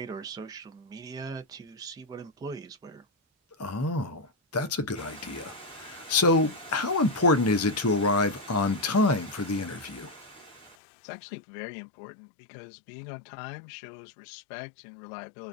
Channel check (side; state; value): right; drops out; at 10.8 s